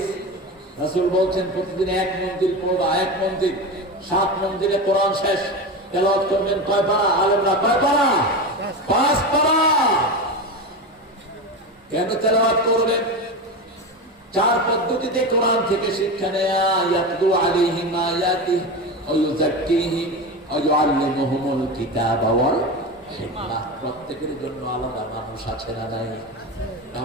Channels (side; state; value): both; normal; correlation 0.22